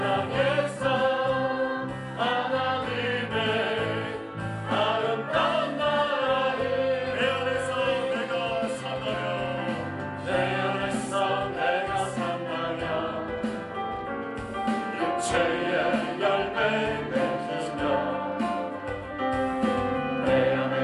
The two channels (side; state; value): both; identical; correlation 1.00